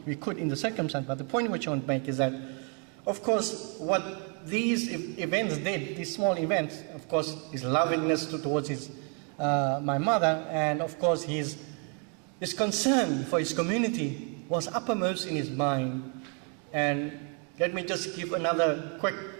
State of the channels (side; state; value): left; quieter; 38.7 dB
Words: could in the circumstance. But the point which I want to make is that, of course, what these events did, these small events, of course, his lovingness towards my mother, and of course his concern for his community was uppermost in his mind. And let me just give another quick